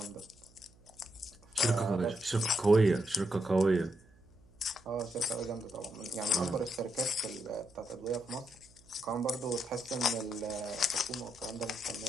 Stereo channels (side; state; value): right; noise; hum, 27 dB below the sound